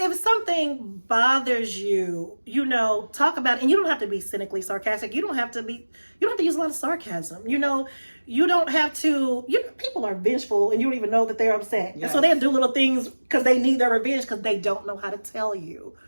If something bothers you, talk about it, and you don't have to be cynically sarcastic. You don't have to use a lot of sarcasm. You don't have to. People are vengeful, and you don't even know that they're upset. Yes. And so they'll do little things because they need their revenge because they don't know how to tell you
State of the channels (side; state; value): both; inverted; correlation -1.00